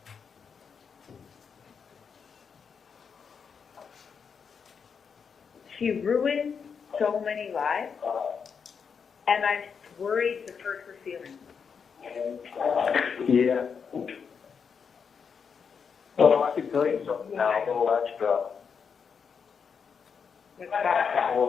She ruined so many lives, and I'm worried to hurt her feelings. Yeah. Well, I can tell you something now, a little extra. What's that?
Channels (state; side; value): quieter; right; 6.3 dB